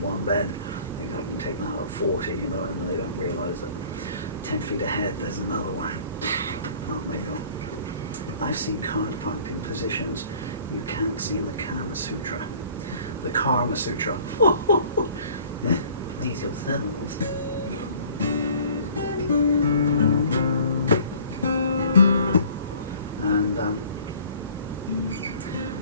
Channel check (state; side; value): inverted; both; correlation -0.52